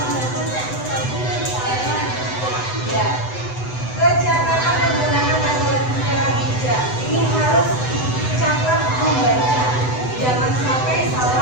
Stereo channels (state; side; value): late; right; 7.9 ms